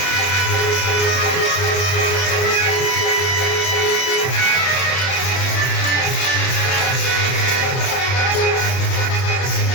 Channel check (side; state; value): right; late; 31 ms